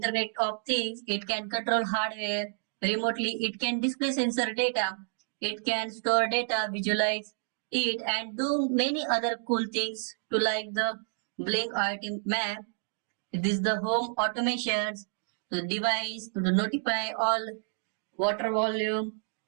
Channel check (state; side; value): silent; left; digital silence